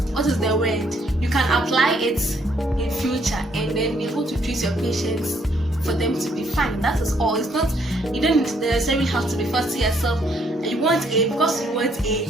What is the word? You can apply it in future and then be able to treat your patients for them to be fine. That is all. It's not, you don't necessarily have to be fussy yourself. You want A, because you want A,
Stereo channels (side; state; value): both; normal; correlation 0.69